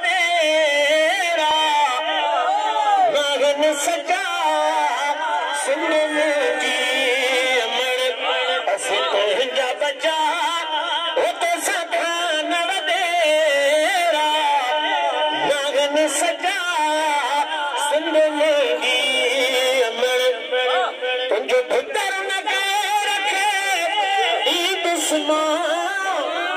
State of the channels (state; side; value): identical; both; correlation 1.00